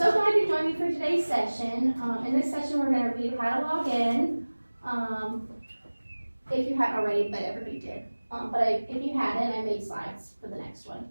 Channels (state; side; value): inverted; both; correlation -1.00